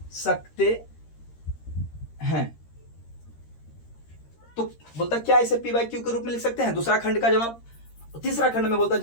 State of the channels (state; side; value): late; right; 13 ms